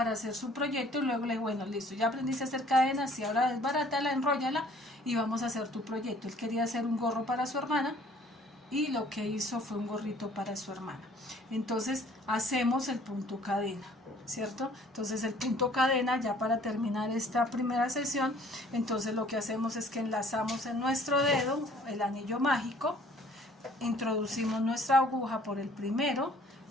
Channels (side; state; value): both; normal; correlation 0.56